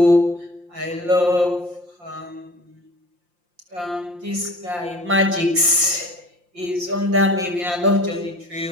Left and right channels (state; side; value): late; left; 5.7 ms